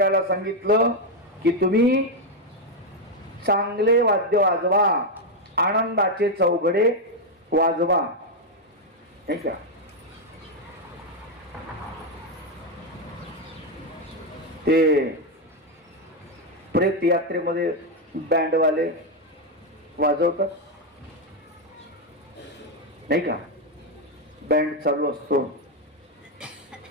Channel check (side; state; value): both; normal; correlation 0.03